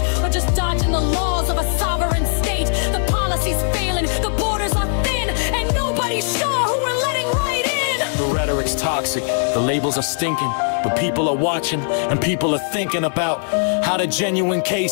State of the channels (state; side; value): silent; right; 66 dB below the other